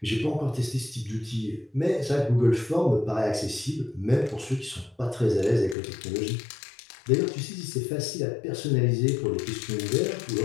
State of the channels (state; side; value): drops out; right; at 5.8 s